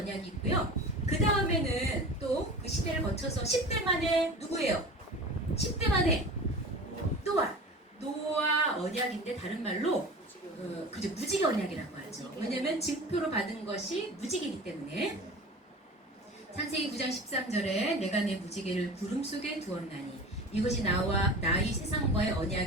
있고요. 그 다음에는 또 그 시대를 거쳐서 10대 만에 누구예요? 10대 만에 노아 언약인데 다른 말로 그죠, 무지개 언약이라고 하죠. 왜냐면 증표로 받은 것이 무지개이기 때문에. 창세기 9장 13절에 내가 내 무지개를 구름 속에 두었나니 이것이 나와 나의 세상과의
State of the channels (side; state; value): both; normal; correlation 0.35